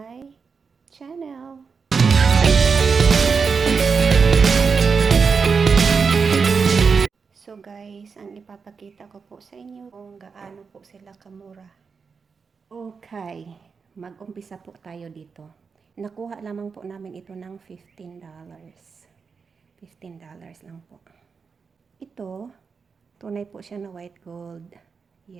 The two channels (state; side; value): quieter; left; 5.4 dB